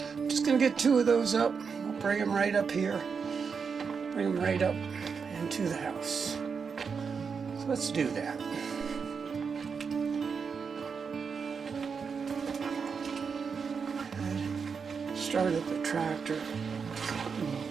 just going to get 2 of those up. I'll bring them right up here. Bring them right up into the house. So let's do that. Started the tractor.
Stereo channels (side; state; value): left; quieter; 5.8 dB